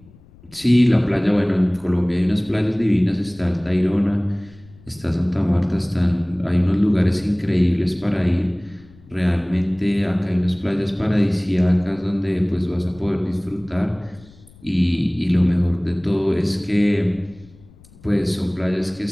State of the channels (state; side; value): noise; left; rumble, 25 dB below the sound